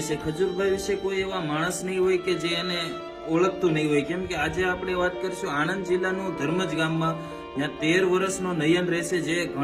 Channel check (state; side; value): identical; both; correlation 1.00